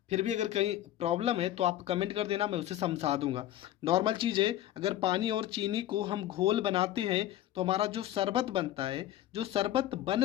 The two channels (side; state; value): right; quieter; 13.0 dB